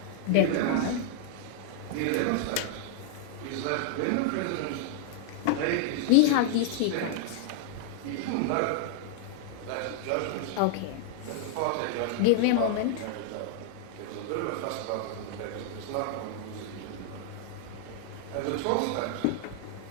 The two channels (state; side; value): different; both; correlation 0.00